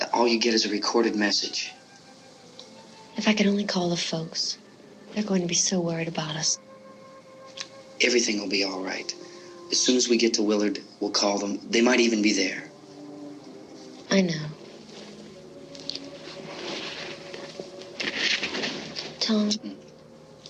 All you get is a recorded message. If I could only call the folks. They're going to be so worried about us. Everything will be all right. As soon as we get to Willard, we'll call them. They might even be there. I know. Tom,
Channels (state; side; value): identical; both; correlation 1.00